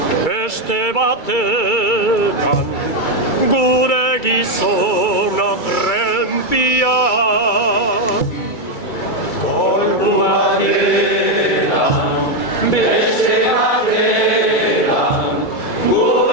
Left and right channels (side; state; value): right; late; 2.3 ms